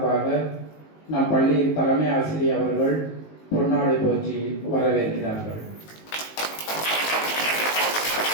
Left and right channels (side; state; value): right; late; 19 ms